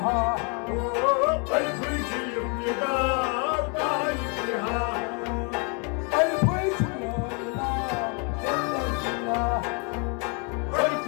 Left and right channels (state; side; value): quieter; right; 34.5 dB